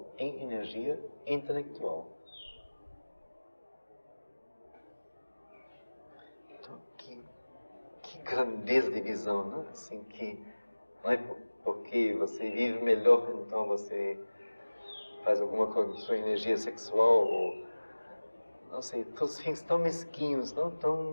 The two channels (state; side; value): inverted; both; correlation -1.00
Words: em energia intelectual. Então, que grandeza de visão, não? Assim que não é porque você vive melhor, então você faz alguma coisa com sua energia sexual, ou não sei, todos fins tão mesquinhos, não?